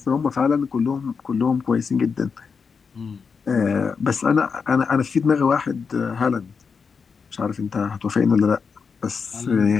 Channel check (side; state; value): right; quieter; 5.6 dB